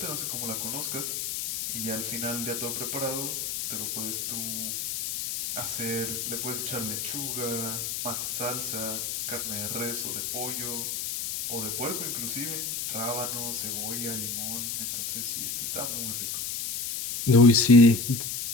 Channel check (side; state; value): left; noise; hiss, 3 dB below the sound